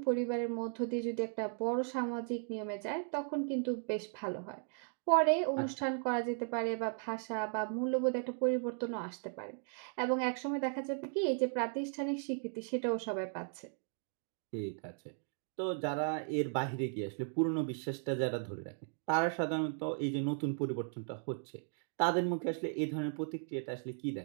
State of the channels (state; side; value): silent; left; 53 dB below the other